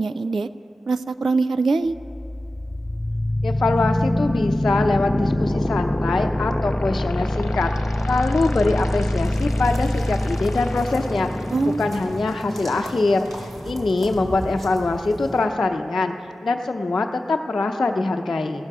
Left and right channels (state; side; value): normal; both; correlation 0.94